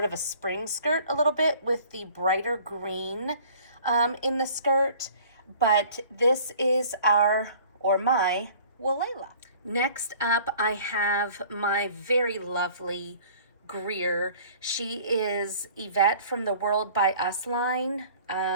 of a spring skirt a little bit with the brighter green in the skirt. But this is my Walela. Next up, I have my very lovely Greer. She is Yvette from the World by Us line.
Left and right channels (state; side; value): inverted; both; correlation -0.50